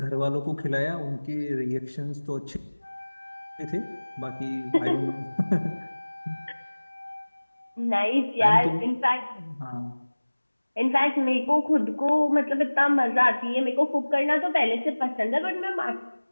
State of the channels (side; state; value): both; inverted; correlation -1.00